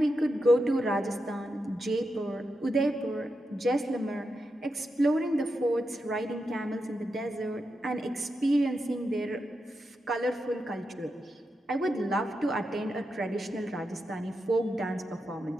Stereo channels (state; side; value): normal; both; correlation 0.87